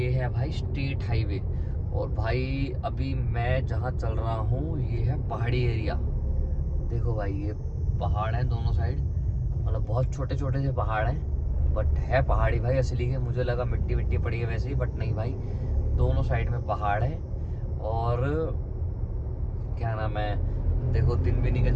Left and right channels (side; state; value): both; identical; correlation 1.00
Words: ये है भाई स्टेट हाईवे। और भाई अभी मैं जहाँ चल रहा हूँ ये है पहाड़ी एरिया। देखो भाई ये पहाड़ है दोनों साइड, मतलब बहुत छोटे छोटे से पहाड़ हैं, बट है पहाड़ी भाई असली के। मुझे लगा मिट्टी मिट्टी पड़ी है वैसे ही, बट नहीं भाई, दोनों साइड में पहाड़ है। और क्या नाम है, देखो दिन भी निकल